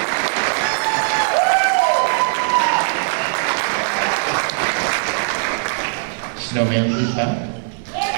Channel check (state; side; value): silent; left; digital silence